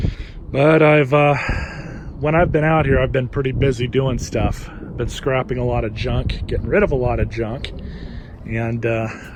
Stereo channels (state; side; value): identical; both; correlation 1.00